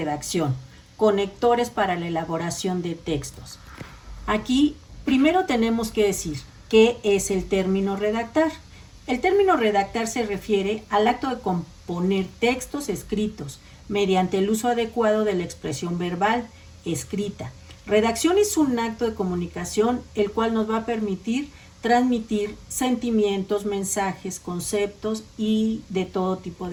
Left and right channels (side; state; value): both; identical; correlation 1.00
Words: conectores para la elaboración de textos. Aquí primero tenemos que decir qué es el término redactar. El término redactar se refiere al acto de componer textos escritos mediante el uso adecuado de la expresión verbal escrita. Redacción es un acto de comunicación el cual nos va a permitir transmitir sentimientos, mensajes, conceptos y de todo tipo